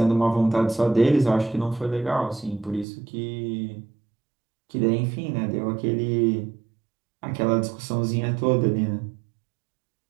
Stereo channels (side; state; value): left; drops out; at 2.9 s